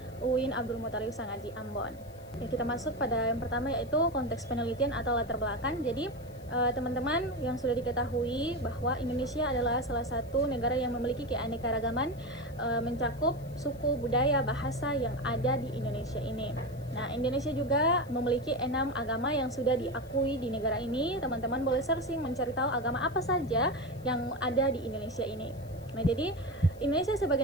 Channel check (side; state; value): left; noise; hiss, 26 dB below the sound